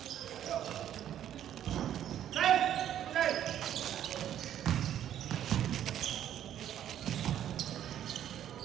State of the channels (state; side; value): quieter; left; 10.8 dB